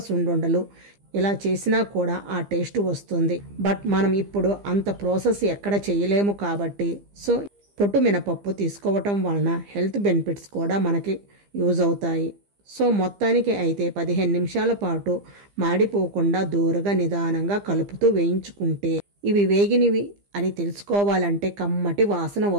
సున్నుండలు ఇలా చేసినా కూడా ఆ టేస్ట్ వస్తుంది. బట్ మనం ఇప్పుడు అంత ప్రాసెస్ ఎక్కడ చేయలేము కాబట్టి సో పొట్టు మినపప్పు తీసుకోవటం వలన హెల్త్ బెనిఫిట్స్ కూడా మనకి యూజ్ అవుతాయి. సో మొత్తానికి అయితే 15 నిమిషాల పాటు మాడిపోకుండా దూరగా నిదానంగా కలుపుతూ వేయించుకుంటే ఇవి వేగినవి అని తెలుసుకోవాలంటే కమ్మటి వాసన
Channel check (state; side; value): late; left; 15 ms